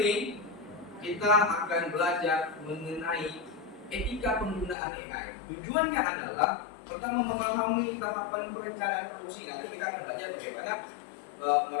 ini kita akan belajar mengenai etika penggunaan AI. Tujuannya adalah pertama memahami tahapan perencanaan produksi. Nanti kita akan belajar bagaimana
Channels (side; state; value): right; drops out; at 4.8 s